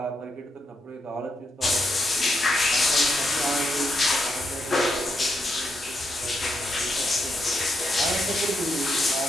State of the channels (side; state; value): both; normal; correlation 0.80